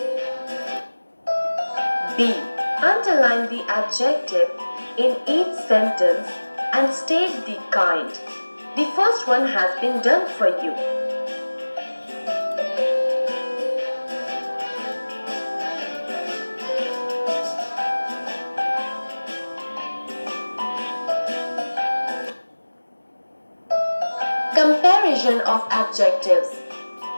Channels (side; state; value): both; inverted; correlation -1.00